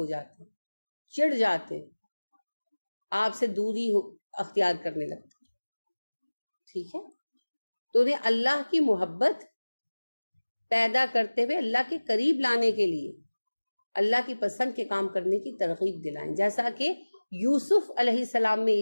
جاتے ہیں، چڑ جاتے ہیں، آپ سے دوری اختیار کرنے لگتے ہیں. ٹھیک ہے، تو انہیں اللہ کی محبت پیدا کرتے ہوئے اللہ کے قریب لانے کے لیے اللہ کی پسند کے کام کرنے کی ترغیب دلائیں. جیسا کہ یوسف علیہ السلام میں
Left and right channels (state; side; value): inverted; both; correlation -1.00